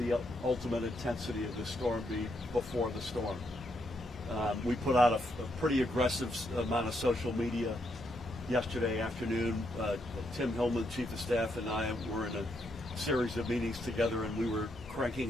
ultimate intensity of the storm be before the storm. We put out a pretty aggressive amount of social media yesterday afternoon. Tim Hillman, Chief of Staff, and I were in a series of meetings together, and we were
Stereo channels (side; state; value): both; normal; correlation 0.78